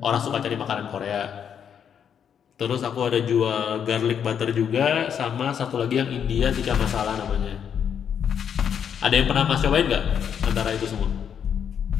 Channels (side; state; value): right; quieter; 8.1 dB